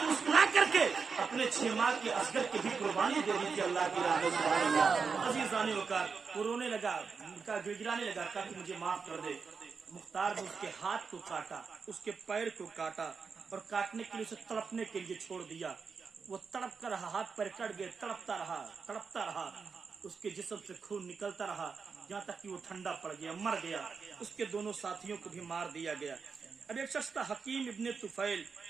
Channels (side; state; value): left; quieter; 5.4 dB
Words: مسکرا کر کے اپنے 6 ماہ کے اصغر کی بھی قربانی دے دی تھی اللہ کی راہ میں. سبحان اللہ. عزیزان وقار, وہ رونے لگا, گڑگڑانے لگا, کہا کہ مجھے معاف کر دے. مختار نے اس کے ہاتھ کو کاٹا, اس کے پیر کو کاٹا, اور کاٹنے کے لیے اسے تڑپنے کے لیے چھوڑ دیا. وہ تڑپ کر رہا, ہاتھ پیر کٹ گئے, تڑپتا رہا. اس کے جسم سے خون نکلتا رہا, یہاں تک کہ وہ ٹھنڈا پڑ گیا, مر گیا. اس کے دونوں ساتھیوں کو بھی مار دیا گیا. اب ایک شخص تھا حکیم ابن طفیل,